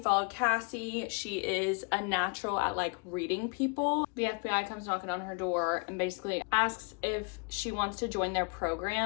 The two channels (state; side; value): quieter; right; 34.0 dB